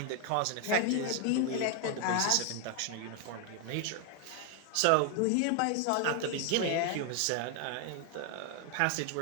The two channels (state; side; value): different; both; correlation 0.00